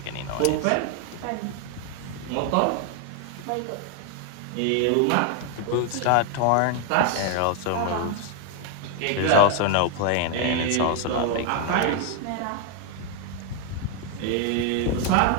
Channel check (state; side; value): different; both; correlation 0.01